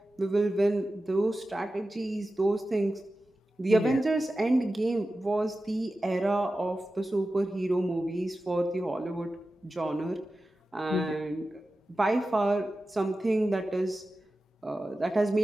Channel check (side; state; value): both; normal; correlation 0.94